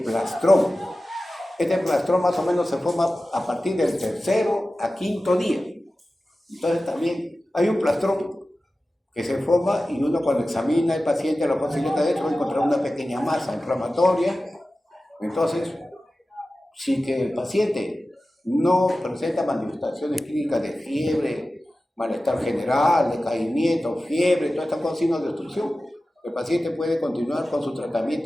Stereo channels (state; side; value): normal; both; correlation 0.95